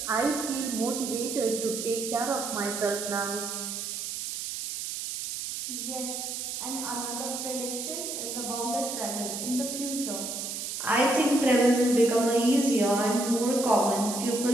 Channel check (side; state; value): right; noise; hiss, 5 dB below the sound